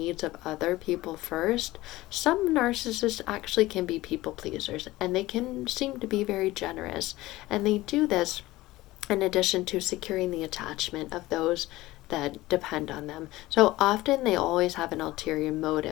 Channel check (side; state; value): right; quieter; 18.1 dB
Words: of other people first, some narcissists actually can be people pleasers, and they can seem to be very generous. And they do this in addition to securing the attachment of those that depend on them. So often they always have an ulterior